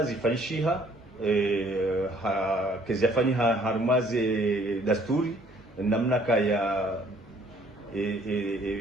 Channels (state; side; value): normal; both; correlation 0.60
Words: zifanyishiha kezafani harmaze dasturi namna kaya